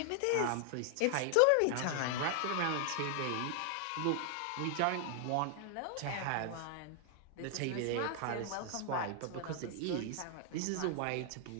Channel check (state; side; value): different; both; correlation 0.00